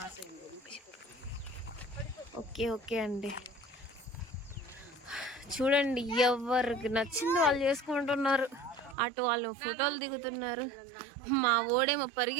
అయింది. ఓకే ఓకే అండి. చూడండి ఎవరికి నచ్చింది వాళ్ళు చేసుకుంటున్నారు. అటు వాళ్ళు ఫోటోలు దిగుతున్నారు. మా ఓడేమో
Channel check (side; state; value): left; drops out; at 9.0 s